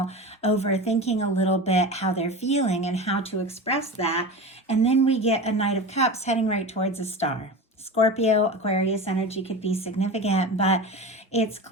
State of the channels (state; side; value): normal; both; correlation 0.29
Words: overthinking a little bit how they're feeling and how to express that. And then we get a Knight of Cups heading right towards a star. Scorpio, Aquarius energy could be significant, but it's